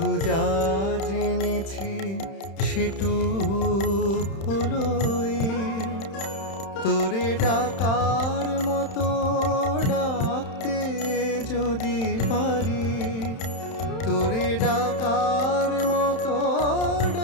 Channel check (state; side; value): late; right; 31 ms